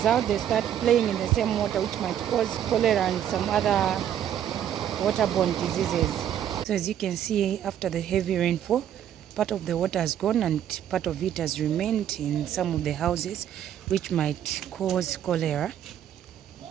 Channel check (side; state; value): left; quieter; 10.3 dB